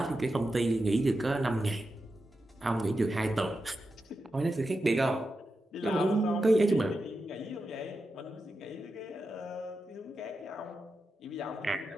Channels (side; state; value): both; normal; correlation 0.89